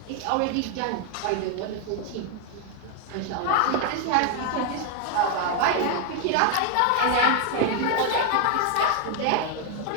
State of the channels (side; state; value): both; different; correlation 0.00